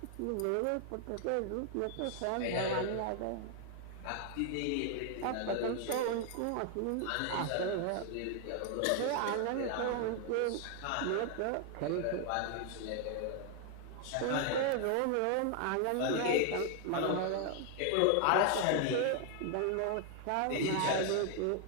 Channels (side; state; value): both; different; correlation 0.00